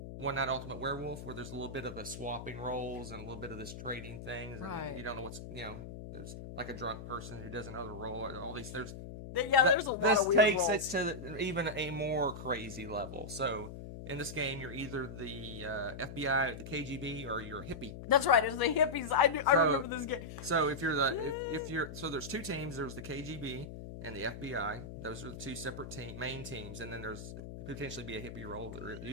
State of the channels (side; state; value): left; noise; hum, 10 dB below the sound